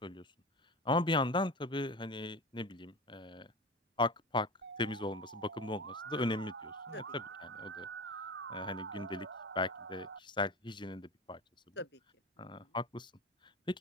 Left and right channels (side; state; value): both; normal; correlation 0.28